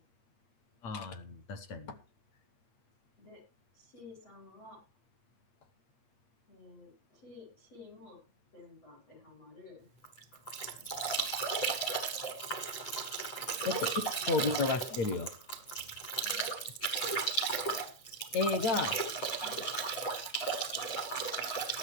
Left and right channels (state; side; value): late; right; 8.6 ms